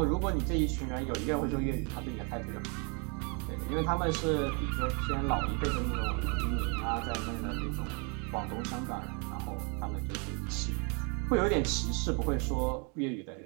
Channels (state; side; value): quieter; left; 35.3 dB